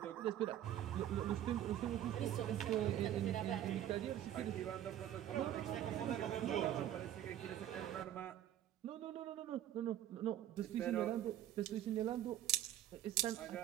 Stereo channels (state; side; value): quieter; left; 11.8 dB